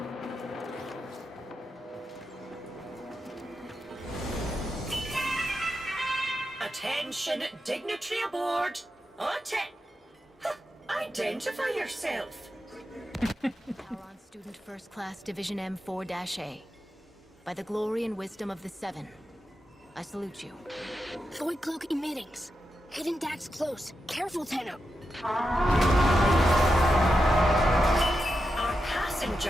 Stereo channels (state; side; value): normal; both; correlation 0.88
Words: Attention, dignitary aboard. Identify yourself. Sauron Student First Class Division M4-A. By the glory and wisdom of the Seven, I salute you. Void cloak emittings. Hidden Dax close. Careful, Tenno. Our